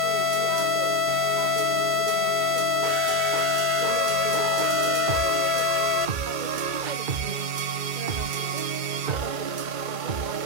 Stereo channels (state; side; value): late; left; 2.1 ms